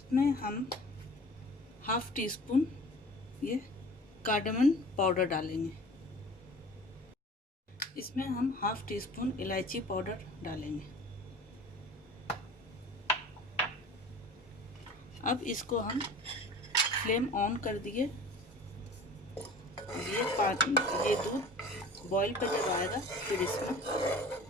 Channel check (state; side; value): normal; both; correlation 0.43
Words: हम हाफ़ टी स्पून ये कार्डमम पाउडर डालेंगे। इसमें हम हाफ़ टी स्पून इलायची पाउडर डालेंगे। अब इसको हम फ्लेम ऑन कर दिए। ये दूध बॉईल पे जब आएगा फिर इसमें